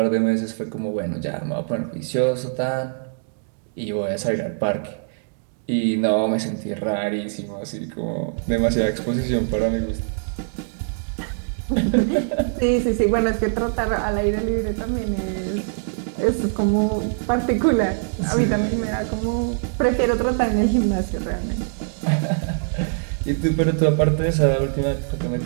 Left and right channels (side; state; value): left; silent; digital silence